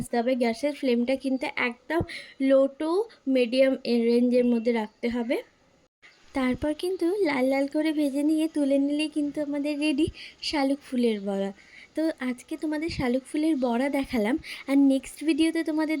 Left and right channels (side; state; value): both; identical; correlation 1.00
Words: হবে। গ্যাসের ফ্লেমটা কিন্তু একদম লো টু মিডিয়াম রেঞ্জের মধ্যে রাখতে হবে। তারপর কিন্তু লাল লাল করে ভেজে নিয়ে তুলে নিলেই কিন্তু আমাদের রেডি শালুক ফুলের বড়া। তো আজকে তোমাদের শালুক ফুলের বড়া দেখালাম, আর নেক্সট ভিডিওতে তোমাদের